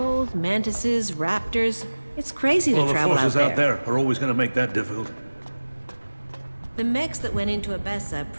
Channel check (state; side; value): inverted; both; correlation -1.00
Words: mantises, raptors. It's crazy to The travel forces out out there are always going to make that difficult. The mechs that went into Abessa